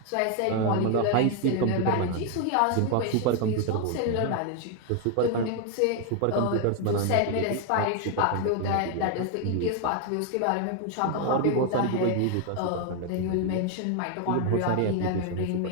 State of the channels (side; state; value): both; different; correlation 0.01